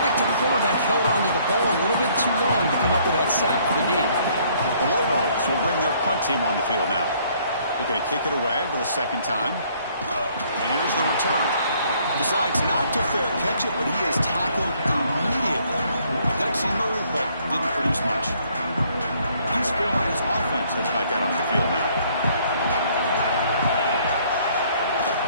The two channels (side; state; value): both; inverted; correlation -0.63